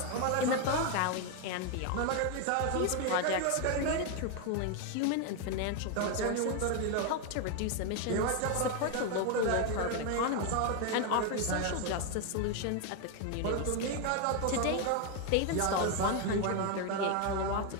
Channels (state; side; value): different; both; correlation 0.01